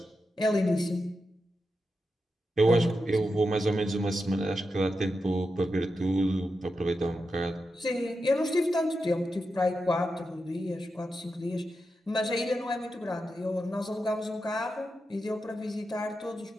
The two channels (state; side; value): normal; both; correlation 0.88